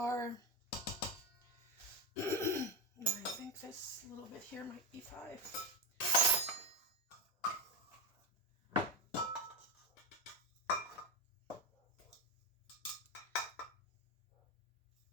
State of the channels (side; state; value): both; normal; correlation 0.14